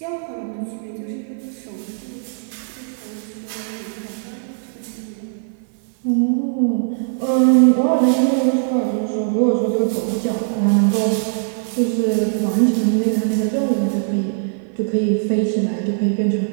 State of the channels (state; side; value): silent; left; 56 dB below the other